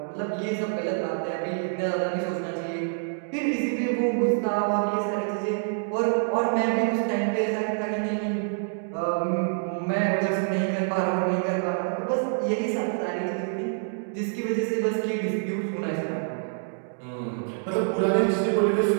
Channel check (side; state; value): left; silent; digital silence